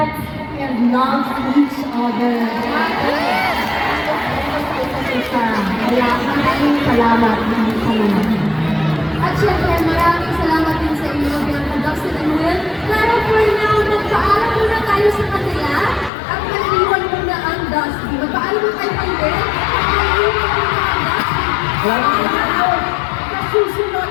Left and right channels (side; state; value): right; drops out; at 16.1 s